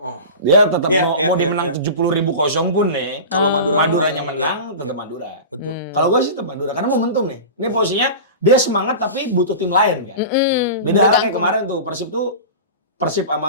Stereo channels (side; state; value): both; inverted; correlation -0.31